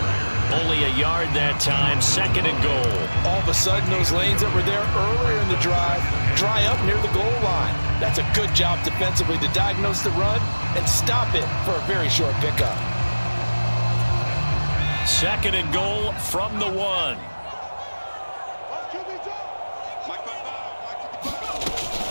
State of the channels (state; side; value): inverted; both; correlation -1.00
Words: Only a yard that time, 2nd and goal. All of a sudden, those lanes that were there earlier in the drive dry up near the goal line. That's a good job defensively to diagnose the run and stop it for a very short pickup. 2nd and goal from the 1.